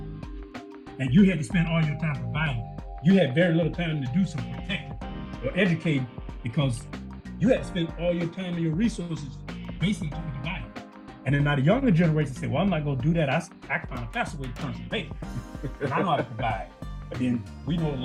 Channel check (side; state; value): both; identical; correlation 1.00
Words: and you had to spend all your time providing. You had very little time to do some protecting or educating because you had to spend all your time and your resources basically to provide. And then now the younger generation say, well, I'm not going to do that. I can find a faster way to turn some paper. And I know how to provide. But then we know the